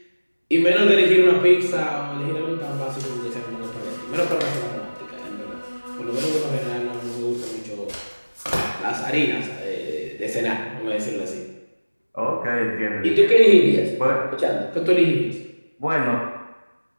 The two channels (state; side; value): inverted; both; correlation -1.00